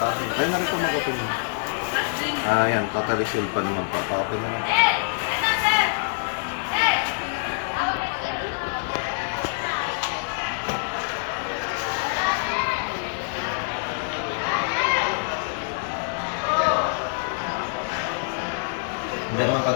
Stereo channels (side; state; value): right; silent; 62 dB below the other